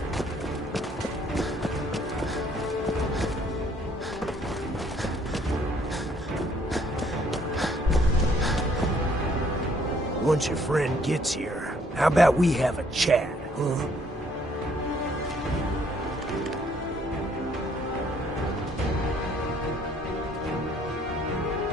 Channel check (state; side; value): normal; both; correlation 0.64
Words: Once your friend gets here, how about we have a chat, huh?